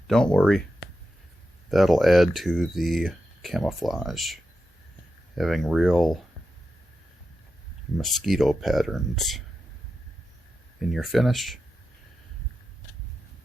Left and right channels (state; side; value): normal; both; correlation 0.89